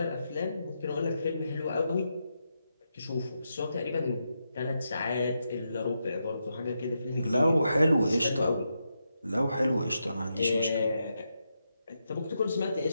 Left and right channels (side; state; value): both; inverted; correlation -0.84